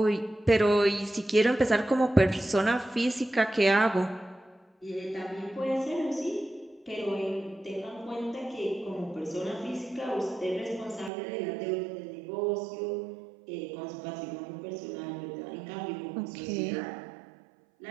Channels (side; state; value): left; drops out; at 11.1 s